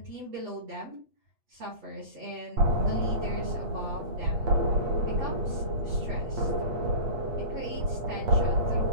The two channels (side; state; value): left; late; 8.5 ms